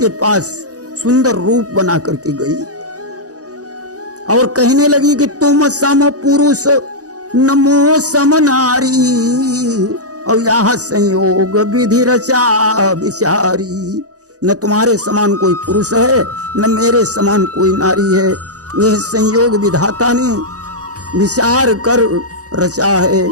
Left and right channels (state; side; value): late; left; 0.67 ms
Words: पास सुंदर रूप बना करके गई और कहने लगी कि तुम सम पुरुष नमो सम नारी और यह संयोग विधि रचा विचारी। न तुम्हारे समान कोई पुरुष है, न मेरे समान कोई नारी है। यह संयोग विधाता ने विचार कर रचा है।